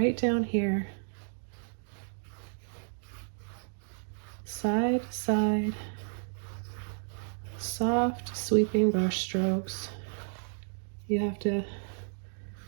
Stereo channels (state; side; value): silent; left; digital silence